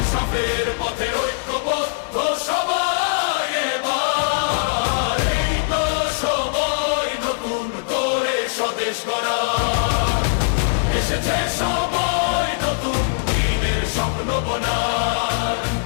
পথে ঐক্যবদ্ধ সবাই এবার। এই তো সময় নতুন করে স্বদেশ গড়া, এসেছে সময় নতুন দিনের স্বপ্ন বোনার।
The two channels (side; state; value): right; silent; digital silence